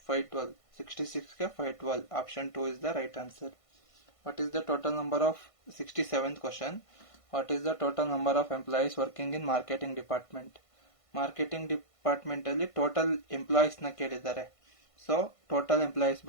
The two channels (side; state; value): right; late; 1.5 ms